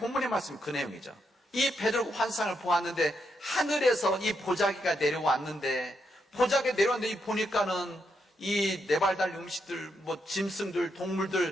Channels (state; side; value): normal; both; correlation 0.80